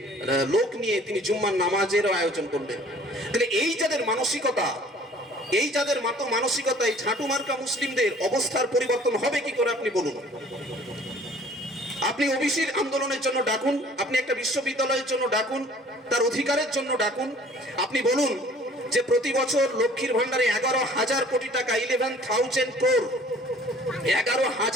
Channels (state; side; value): normal; both; correlation 0.52